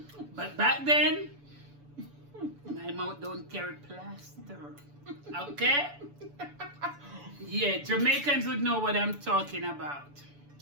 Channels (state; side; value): late; left; 7.0 ms